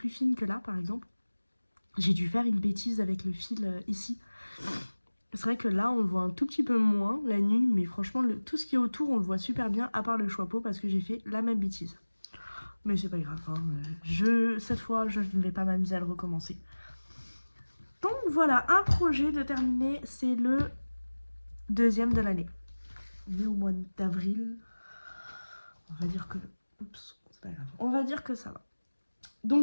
fines que là, par exemple. J'ai dû faire une bêtise avec le fil ici. C'est vrai que là, on le voit un tout petit peu moins la nuit, mais franchement, tout ce qui est autour, on le voit super bien, à part le chapeau, parce que j'ai fait la même bêtise. Mais c'est pas grave, hein. Cette fois, je ne vais pas m'amuser à le recommencer. Donc voilà, un projet de terminer, c'est le deuxième de l'année. On est au mois d'avril. On va dire que... Oups, c'est pas grave. On va dire que ça va.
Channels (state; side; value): inverted; both; correlation -1.00